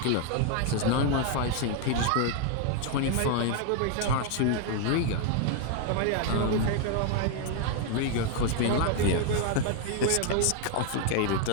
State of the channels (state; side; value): different; both; correlation 0.00